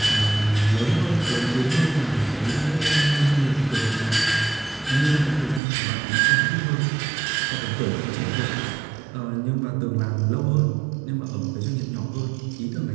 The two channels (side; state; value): left; drops out; at 5.6 s